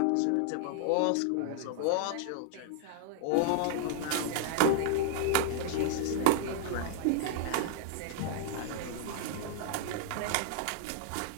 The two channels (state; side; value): different; both; correlation -0.01